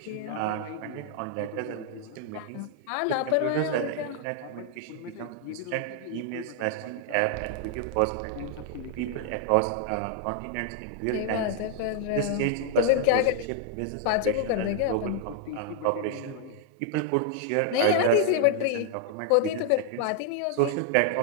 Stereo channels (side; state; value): both; different; correlation 0.00